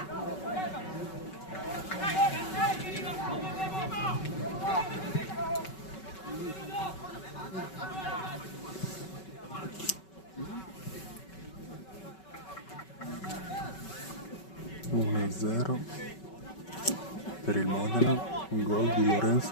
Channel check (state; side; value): late; right; 5.3 ms